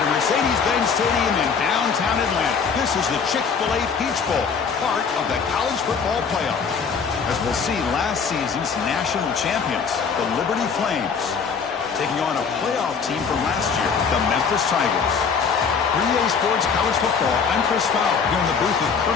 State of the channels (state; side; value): quieter; right; 5.9 dB